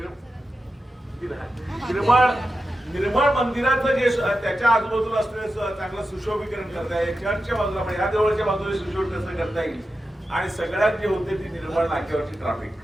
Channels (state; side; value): normal; both; correlation 0.91